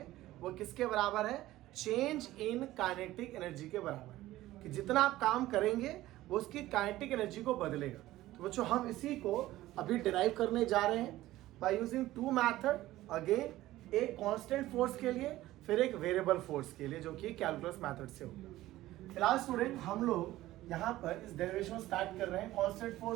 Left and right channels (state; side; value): quieter; left; 16.0 dB